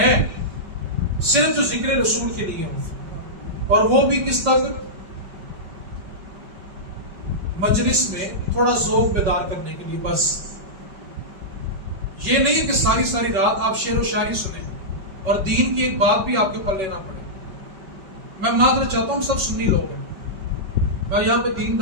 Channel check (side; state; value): left; late; 5.2 ms